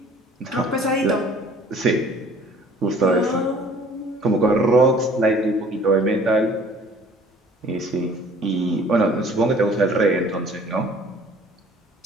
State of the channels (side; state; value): both; normal; correlation 0.53